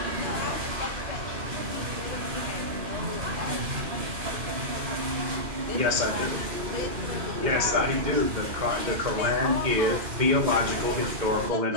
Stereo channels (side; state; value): left; late; 2.1 ms